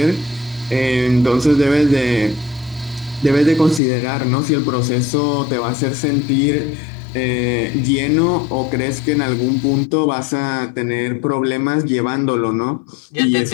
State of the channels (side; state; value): right; drops out; at 3.8 s